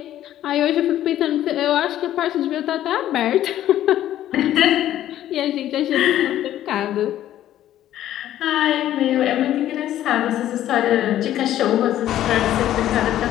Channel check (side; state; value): right; quieter; 12.5 dB